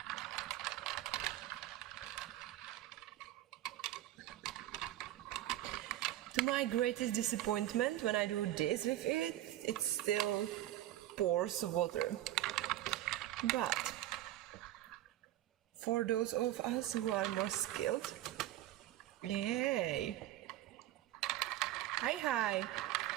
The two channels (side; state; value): left; quieter; 14.1 dB